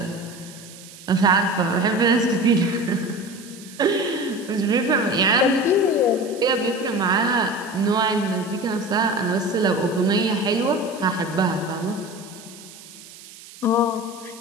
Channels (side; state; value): right; noise; hiss, 19 dB below the sound